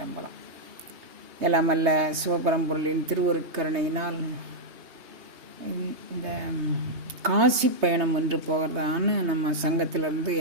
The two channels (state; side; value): late; left; 3.3 ms